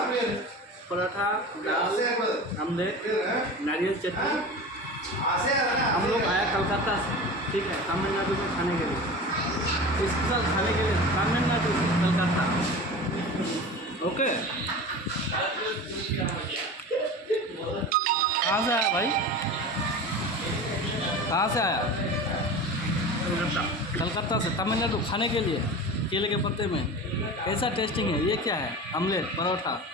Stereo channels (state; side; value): normal; both; correlation 0.32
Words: पराठा दाल omelette नारियल चटनी। हम लोग आया कलकत्ता से, ठीक है, तमिलनाडु में खाने के लिए, स्पेशल खाने के लिए तमिलनाडु कलकत्ता। ओके, कहाँ से आया भाई, कहाँ से आया? कलकत्ता से तमिलनाडु खाने के लिए केले के पत्ते में। कैसा टेस्टिंग है? ये क्या है? आमलेट परोठा